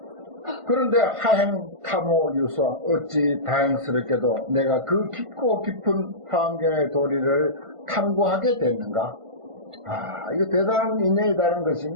그런데 하행 탐호 유서 어찌 다행스럽게도 내가 그 깊고 깊은 환경의 도리를 탐구하게 됐는가. 이거 대단한 인연이다는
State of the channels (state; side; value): late; left; 1.5 ms